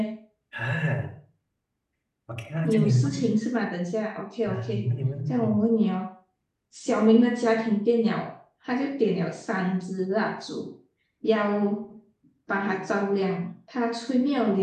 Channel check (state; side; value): identical; both; correlation 1.00